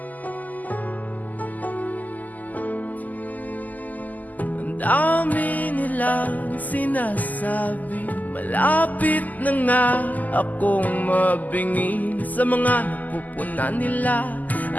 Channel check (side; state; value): right; late; 0.081 ms